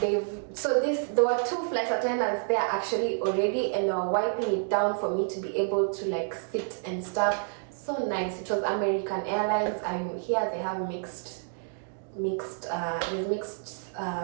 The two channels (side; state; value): left; silent; digital silence